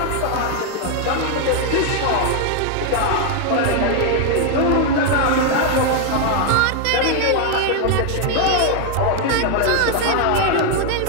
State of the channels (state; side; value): different; both; correlation 0.01